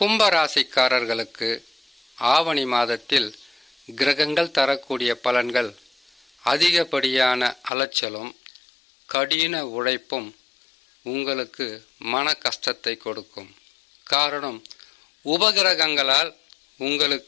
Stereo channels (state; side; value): drops out; right; at 7.7 s